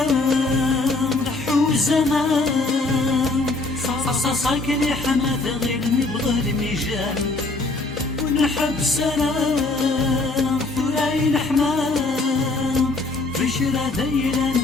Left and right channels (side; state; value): right; quieter; 3.2 dB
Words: رحو زمان صاكني حماث غير نبغى الميجان ونحب سلام ثراين حمام بشرى دايرة